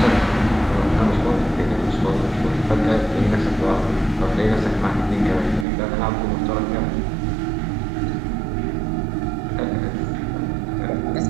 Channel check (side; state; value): left; drops out; at 5.7 s